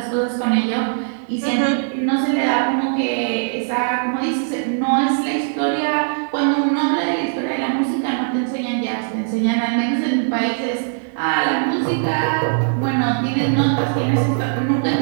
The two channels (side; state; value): left; silent; digital silence